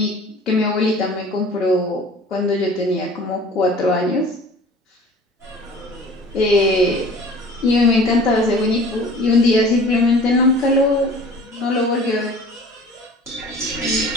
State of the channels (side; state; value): both; normal; correlation 0.45